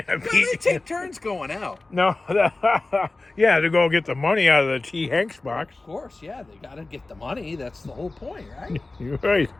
take turns going out. No, yeah, to go get the money out of the T. Hanks box. Of course, yeah, they got to get the money. That's the whole point, right? You're right.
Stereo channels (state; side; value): quieter; right; 3.2 dB